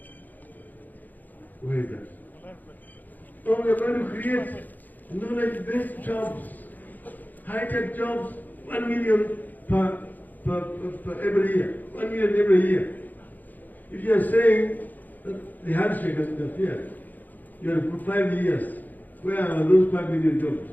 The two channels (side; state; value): right; late; 0.084 ms